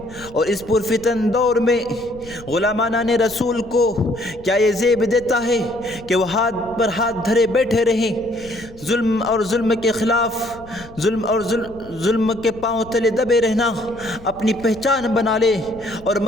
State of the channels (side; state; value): left; noise; rumble, 20 dB below the sound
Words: اور اس پرفتن دور میں غلامان رسول کو کیا یہ زیب دیتا ہے کہ وہ ہاتھ پر ہاتھ دھرے بیٹھے رہیں، ظلم کے خلاف ظلم کے پاؤں تلے دبے رہنا اپنی پہچان بنا لے اور